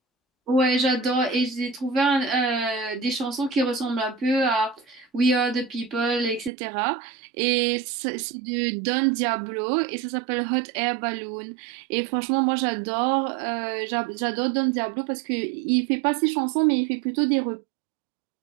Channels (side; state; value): left; drops out; at 6.5 s